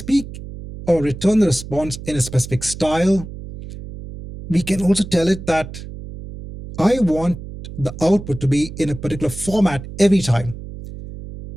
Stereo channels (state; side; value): noise; right; hum, 12 dB below the sound